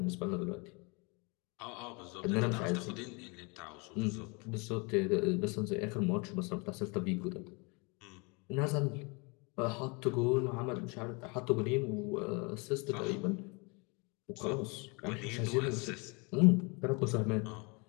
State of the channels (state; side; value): quieter; right; 30.3 dB